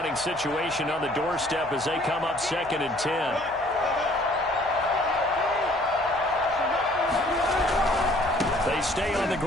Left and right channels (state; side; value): noise; left; hum, 23 dB below the sound